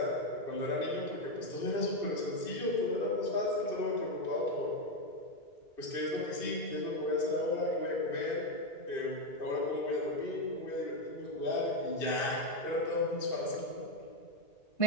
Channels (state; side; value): late; right; 2.6 ms